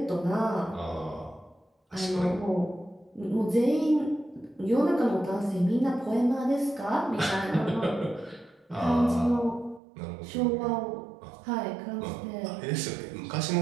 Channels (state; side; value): drops out; left; at 9.8 s